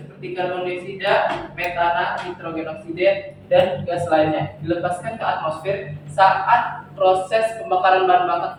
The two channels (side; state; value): both; identical; correlation 1.00